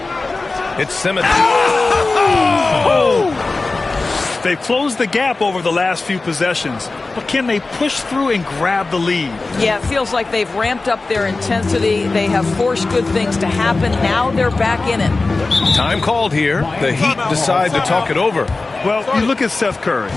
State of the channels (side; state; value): right; quieter; 3.5 dB